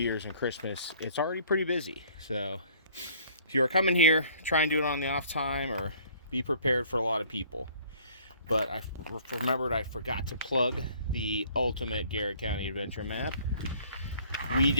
and Christmas. It's already pretty busy. So if you are coming here, try and do it on the off time or be prepared for a lot of people. But I remembered I forgot to plug the ultimate Garrett County Adventure map. We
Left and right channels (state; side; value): inverted; both; correlation -0.56